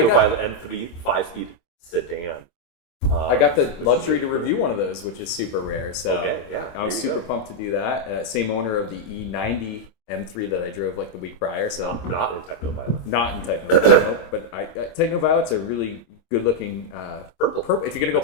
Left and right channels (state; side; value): late; right; 26 ms